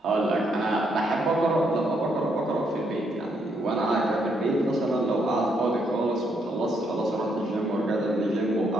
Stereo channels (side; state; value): both; normal; correlation 0.75